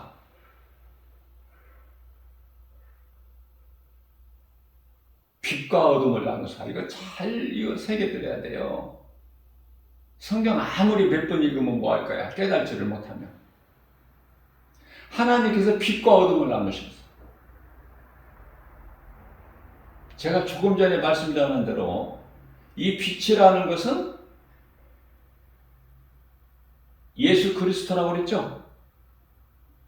빛과 어둠을 나누사. 이거 잘 새겨드려야 돼요. 성경 아무리 몇 번 읽으면 뭐 할 거야? 깨달지를 못하면. 하나님께서 빛과 어둠을 나누셨어요. 제가 조금 전에 말씀드린 대로 이 빛이라는 것은 예수 그리스도라고 그랬죠?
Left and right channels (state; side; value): identical; both; correlation 1.00